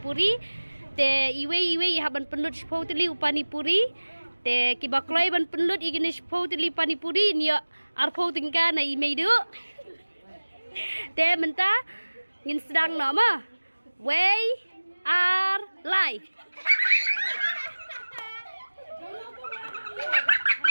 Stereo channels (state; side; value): inverted; both; correlation -1.00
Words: Te iwe iha ban penlut spotli panipuri. Te ki bakloi ban penlut igini spotli panipuri nia arpo tingka na imeidu. Te mentah ngin sedang nama. We are live.